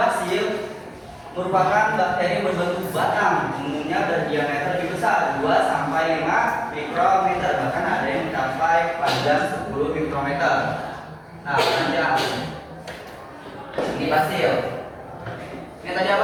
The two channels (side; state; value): both; identical; correlation 1.00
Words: merupakan bakteri berbentuk batang, umumnya berdiameter lebih besar 2 sampai 5 mikrometer, bahkan ada yang mencapai panjang 10 mikrometer. Nah, panjang. Ini basil. Ini tadi